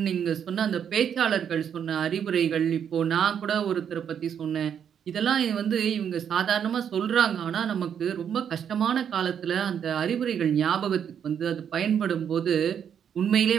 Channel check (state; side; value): quieter; left; 8.3 dB